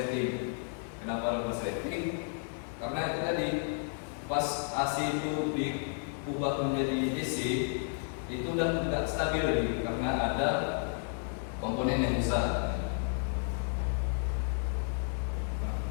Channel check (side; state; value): right; silent; 56 dB below the other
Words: Kenapa ada konsleting? Karena itu tadi pas AC itu diubah menjadi DC, itu udah tidak stabil lagi karena ada komponen yang rusak. Nah,